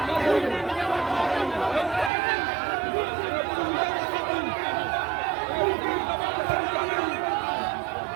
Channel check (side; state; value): left; drops out; at 2.1 s